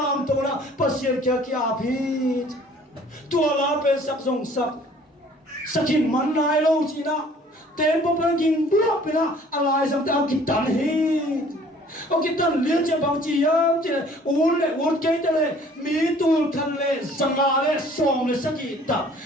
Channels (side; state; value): both; normal; correlation 0.54